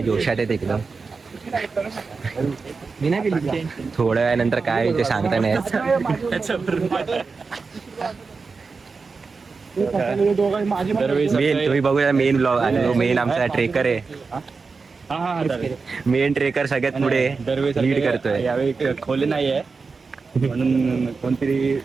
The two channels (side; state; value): left; quieter; 4.6 dB